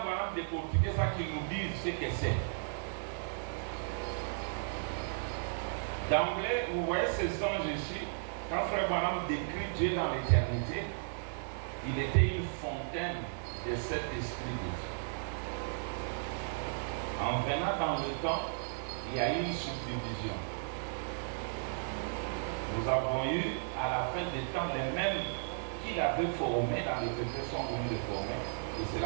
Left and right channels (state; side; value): silent; left; digital silence